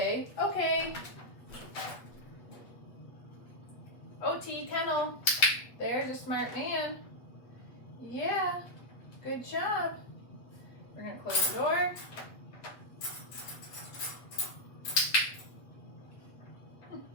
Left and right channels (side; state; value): right; late; 8.2 ms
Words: okay. Otti, kennel. There's a smart man. Yeah. Good job. We're going to close the door.